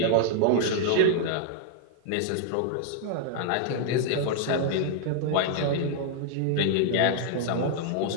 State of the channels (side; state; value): both; different; correlation -0.01